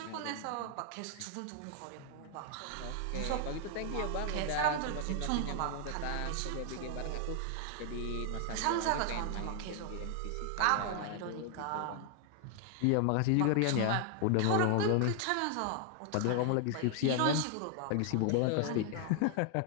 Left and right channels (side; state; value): both; different; correlation 0.00